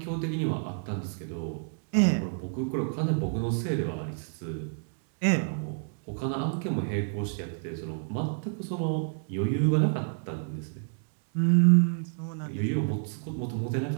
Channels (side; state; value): left; silent; digital silence